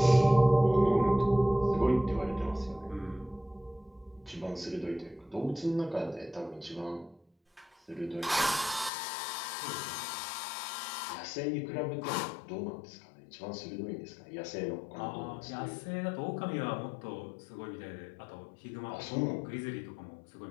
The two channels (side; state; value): right; drops out; at 8.9 s